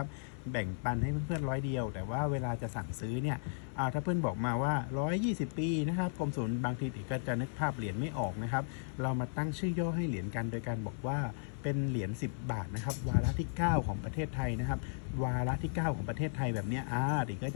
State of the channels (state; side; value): silent; right; 54 dB below the other